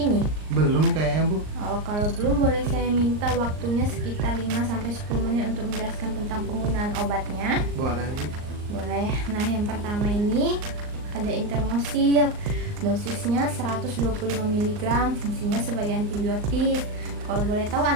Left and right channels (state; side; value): late; left; 39 ms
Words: Belum kayaknya Bu. Oh, kalau belum boleh saya minta waktunya sekitar 5-10 menit untuk menjelaskan tentang penggunaan obatnya. Boleh Bu. Boleh. Nah, yang pertama ini ada Intermosil. Dosisnya 125 mg, fungsinya sebagai antibiotik. Kalau boleh tahu